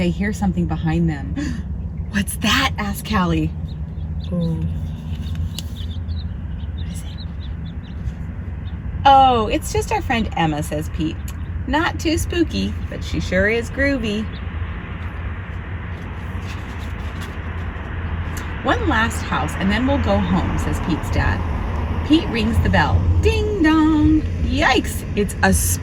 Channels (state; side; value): identical; both; correlation 1.00